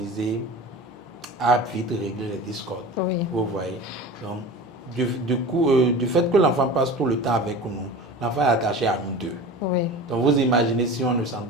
a vite réglé les discords. Vous voyez. Donc, du fait que l'enfant passe tout le temps avec nous, l'enfant est attaché à nous deux. Donc, vous imaginez si on ne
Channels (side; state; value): both; normal; correlation 0.35